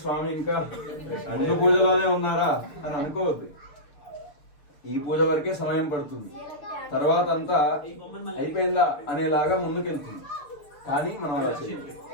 స్వామి ఇంకా ముందు పూజలోనే ఉన్నారా అని అనుకోవద్దు. ఈ పూజ వరకే సమయం పడుతుంది, తర్వాత అంతా అయిపోయిందా అనేలాగా ముందుకెళ్తుంది. కానీ మనం అలా చేయాలి.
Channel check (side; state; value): right; late; 6.7 ms